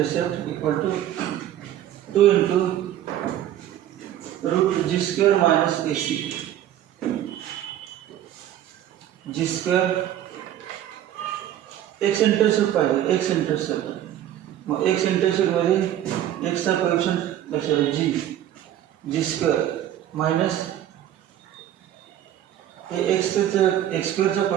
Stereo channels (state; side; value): quieter; left; 11.8 dB